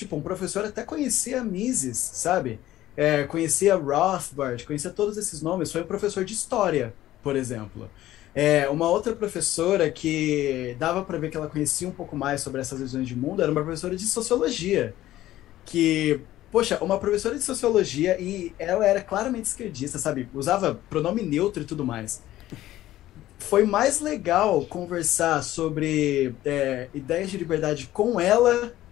um professor até conhecia Mises, sabe? Conhecia Rothbard, conhecia todos esses nomes, foi um professor de história, por exemplo. Uma outra professora que dava para ver que ela conhecia um pouco mais sobre essas visões de mundo era uma professora de sociologia, que, poxa, uma professora de sociologia e ela era claramente esquerdista, sabe? Usava pronome neutro e tudo mais. Foi mais legal conversar sobre ideias de liberdade com ela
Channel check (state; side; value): quieter; right; 14.5 dB